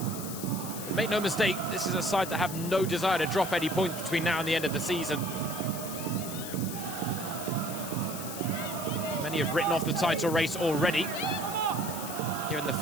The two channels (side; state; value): left; noise; hiss, 9 dB below the sound